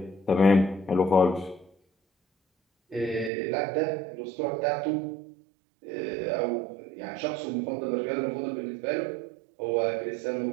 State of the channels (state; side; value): drops out; left; at 3.3 s